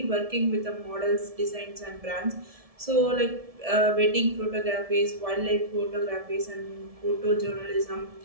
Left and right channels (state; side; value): late; left; 1.7 ms